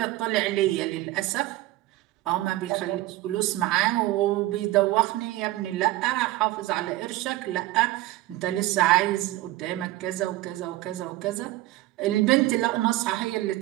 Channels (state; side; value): quieter; left; 17.0 dB